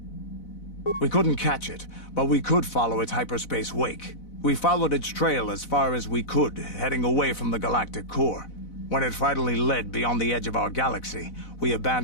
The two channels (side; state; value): right; late; 4.0 ms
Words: We couldn't catch it, but we could follow its hyperspace wake. We followed its trail as far as we could, heading away from the galactic core. When it finally led beyond the edge of our galaxy, we